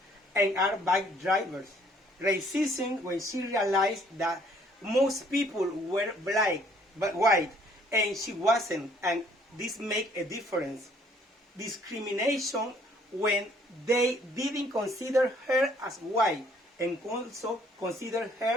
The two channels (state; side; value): normal; both; correlation 0.62